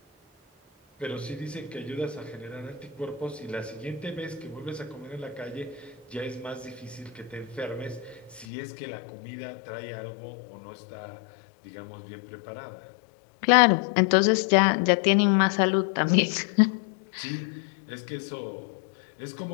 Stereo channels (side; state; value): right; drops out; at 8.5 s